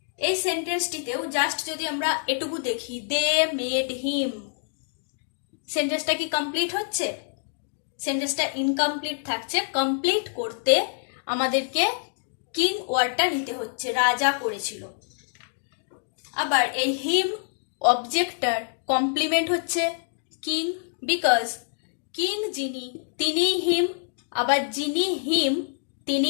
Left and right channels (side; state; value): right; silent; digital silence